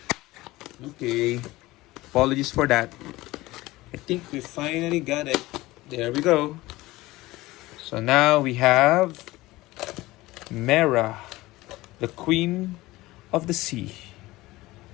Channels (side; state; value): right; quieter; 19.0 dB